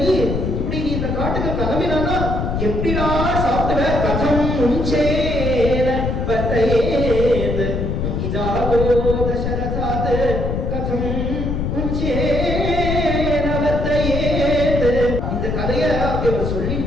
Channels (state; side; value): noise; left; rumble, 1 dB below the sound